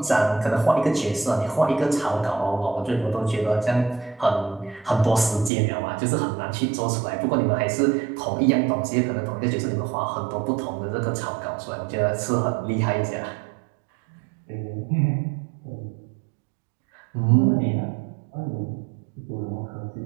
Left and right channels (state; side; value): drops out; left; at 5.5 s